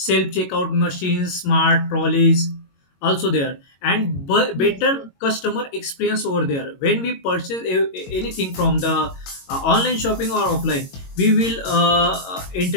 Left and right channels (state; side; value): late; right; 22 ms